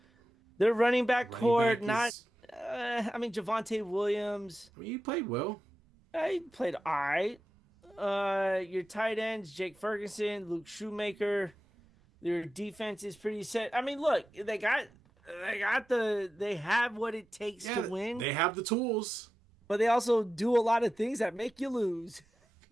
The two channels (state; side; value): normal; both; correlation 0.92